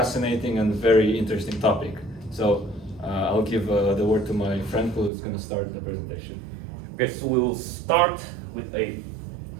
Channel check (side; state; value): left; drops out; at 5.1 s